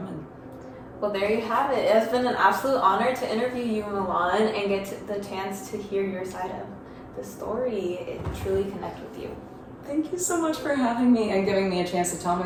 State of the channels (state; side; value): identical; both; correlation 1.00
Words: Well, there you have it. It has been an absolute honor to interview you, Mulan, and get the chance to hear your side of the story and truly connect with you. Thank you so much for having me and giving me a chance to tell my